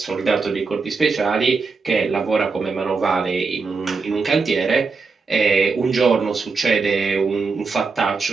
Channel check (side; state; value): left; quieter; 4.5 dB